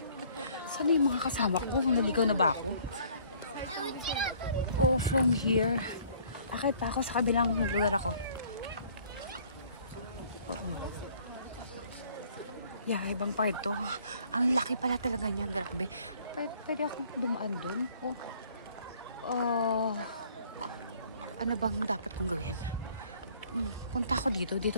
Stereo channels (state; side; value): inverted; both; correlation -0.58